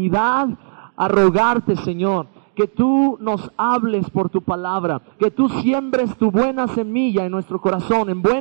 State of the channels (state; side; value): silent; left; digital silence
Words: a rogarte, Señor, que tú nos hables por tu palabra, que tú siembres tu buena semilla en nuestro corazón, en